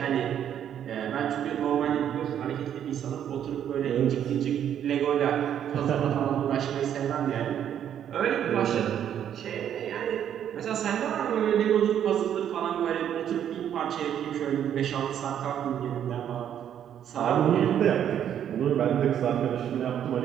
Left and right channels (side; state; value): left; quieter; 9.7 dB